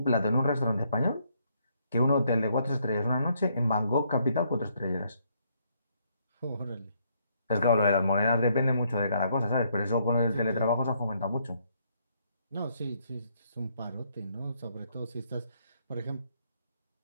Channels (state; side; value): inverted; both; correlation -0.72